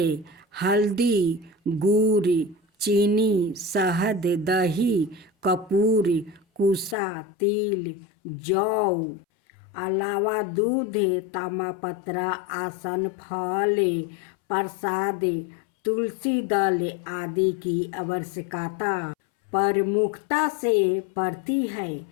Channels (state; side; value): drops out; right; at 7.0 s